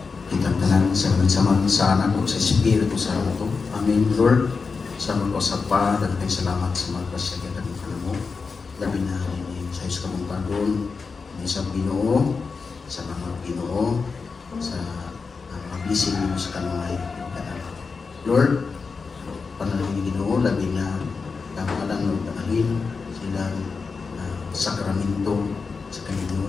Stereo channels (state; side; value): quieter; right; 4.8 dB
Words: Itang tanan sa anak ko sa Espiritu sa ito. Amen, Lord. Sa mga kasapa, dagang salamat sa mga kasagyan ng mo. Labi na rin sa Diyos kamong pagod, sa Ginoo, sa mga Ginoo, sa mga blessing mo sa kanunay. Lord, panalangin ni Ginoo, labi na kamalang nagdaalin silang sakramento sa